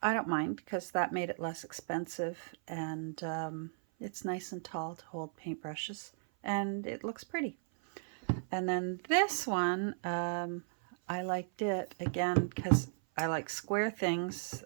I don't mind because that made it less expensive, and it's nice and tall to hold paintbrushes, and it looks pretty. And then this one, I liked it again because I like square things.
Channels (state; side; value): silent; left; 54 dB below the other